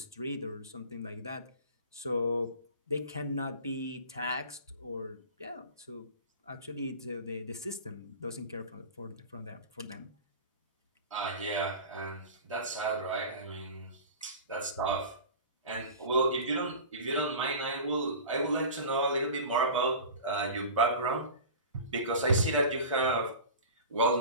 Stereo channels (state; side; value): inverted; both; correlation -0.35